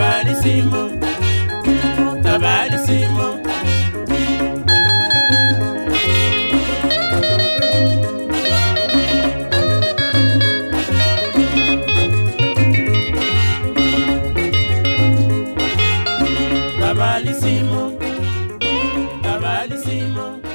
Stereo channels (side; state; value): both; inverted; correlation -1.00